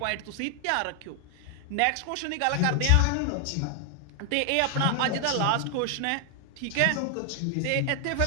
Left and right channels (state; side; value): different; both; correlation 0.00